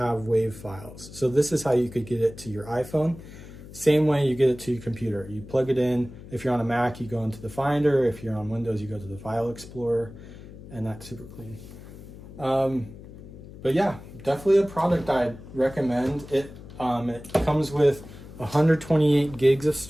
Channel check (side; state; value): left; noise; hum, 16 dB below the sound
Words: WAV files. So this is how you could get it to your iPhone. Same way you get it to your computer. You plug it in. If you're on a Mac, you go into the Finder. If you're on Windows, you go to the File Explorer, and that's super clean. But yeah, definitely a product I'd recommend. It comes with 128 gigs of